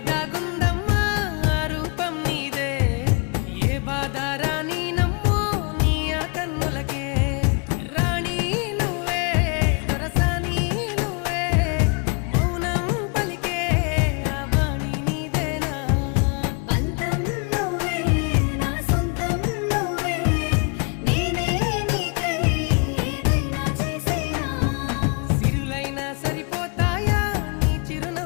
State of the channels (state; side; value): quieter; right; 34.0 dB